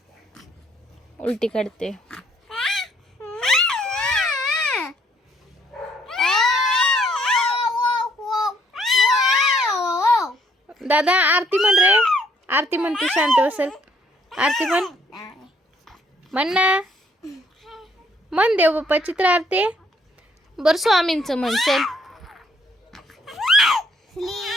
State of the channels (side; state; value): both; normal; correlation 0.67